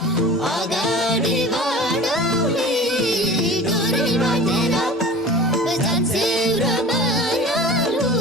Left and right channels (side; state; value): both; normal; correlation 0.39